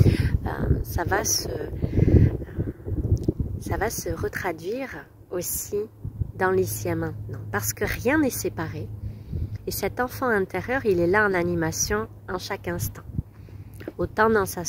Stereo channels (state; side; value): identical; both; correlation 1.00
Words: ça va se retraduire aussi dans l'ici et maintenant. Parce que rien n'est séparé. Et cet enfant intérieur, il est là en animation en chaque instant. Autant dans sa